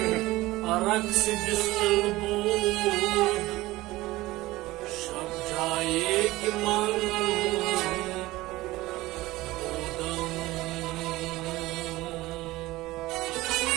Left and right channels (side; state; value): left; quieter; 18.6 dB